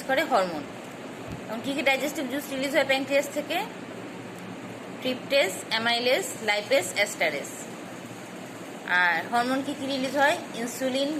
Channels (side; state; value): both; identical; correlation 1.00